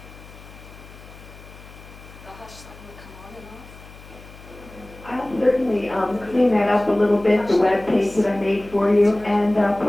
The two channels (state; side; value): noise; left; hum, 19 dB below the sound